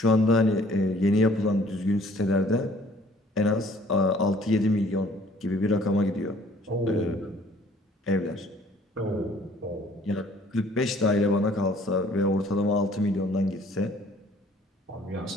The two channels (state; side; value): normal; both; correlation 0.57